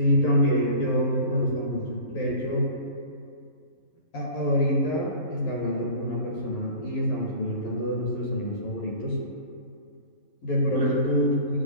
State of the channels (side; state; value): right; late; 11 ms